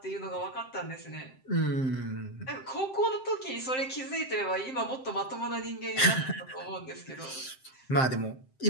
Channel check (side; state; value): right; late; 7.6 ms